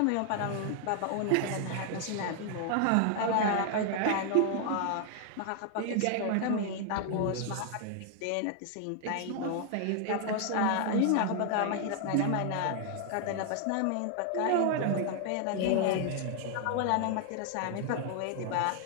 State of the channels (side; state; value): both; different; correlation 0.00